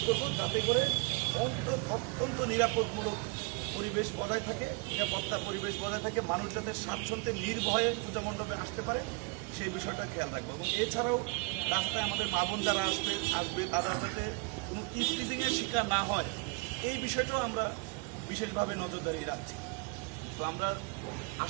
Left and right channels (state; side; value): quieter; left; 28.3 dB